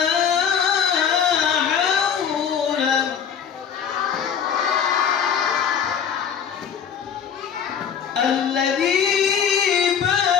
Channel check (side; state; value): right; quieter; 7.7 dB